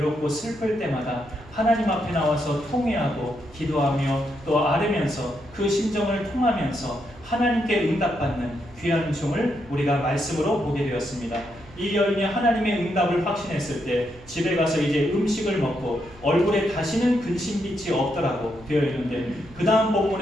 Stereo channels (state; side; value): noise; right; hum, 22 dB below the sound